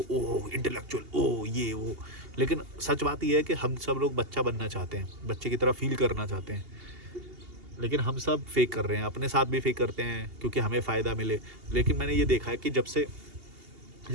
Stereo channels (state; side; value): late; left; 2.8 ms